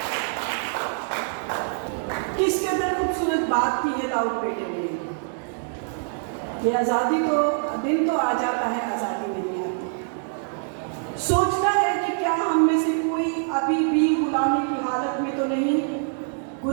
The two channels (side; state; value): left; silent; 62 dB below the other